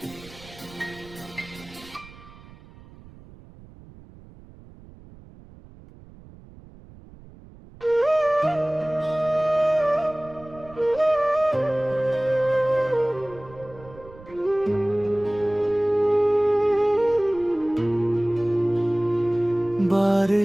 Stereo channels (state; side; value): noise; right; rumble, 21 dB below the sound